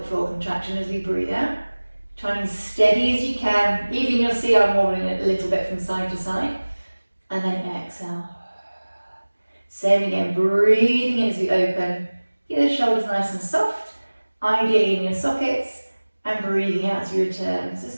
floor contraction as we breathe out. Trying as steady as you can. Even you'll see I'm wobbling it a little bit from side to side. And then exhale. Same again, breathing in as we open. Keep the shoulders nice and soft, ideally in your sockets, and breathing out as you return. So let's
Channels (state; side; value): inverted; both; correlation -1.00